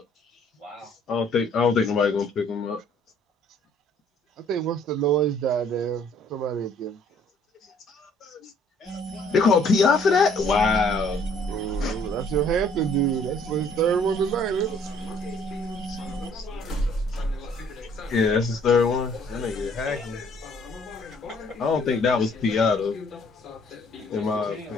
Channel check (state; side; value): normal; both; correlation 0.60